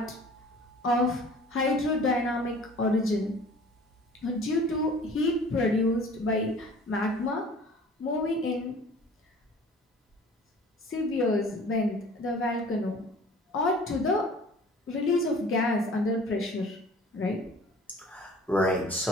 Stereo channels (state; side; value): normal; both; correlation 0.47